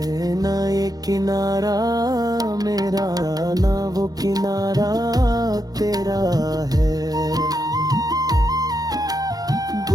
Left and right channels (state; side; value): late; left; 0.18 ms